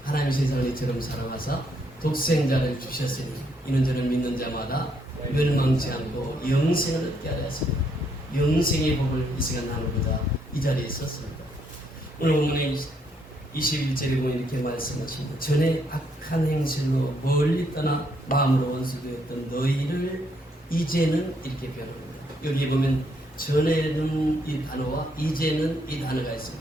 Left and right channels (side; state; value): both; normal; correlation 0.72